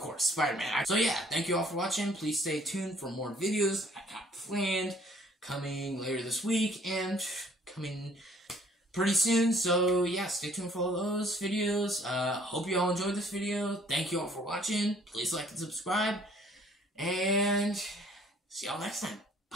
Spider-Man. So yeah, thank you all for watching. Please stay tuned for more videos I got planned, coming later this week, and coming pretty soon. So yeah, stay tuned for all those videos. Hope you all enjoyed this video. Thank you all for watching. Please like and subscribe, and see y'all next time.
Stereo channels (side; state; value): both; normal; correlation 0.58